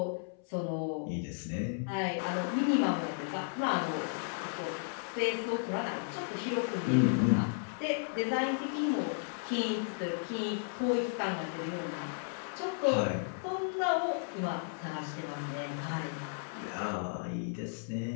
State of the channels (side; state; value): right; silent; 55 dB below the other